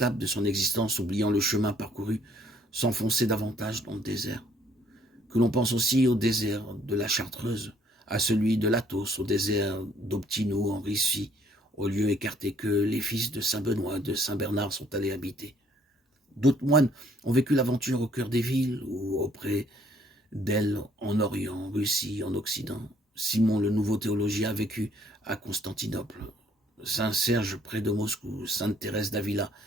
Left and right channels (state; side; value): normal; both; correlation 0.63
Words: de son existence, oubliant le chemin parcouru, s'enfonçait davantage dans le désert. Que l'on pense aussi au désert de la Chartreuse, à celui de l'Athos, au désert d'Optino en Russie, au lieu écarté que les fils de Saint-Benoît, de Saint-Bernard sont allés habiter. D'autres moines ont vécu l'aventure au cœur des villes ou auprès d'elles en Orient, en Russie, en Occident. Simon le nouveau théologien a vécu à Constantinople. Saint Serge près de Moscou, Sainte Thérèse d'Avila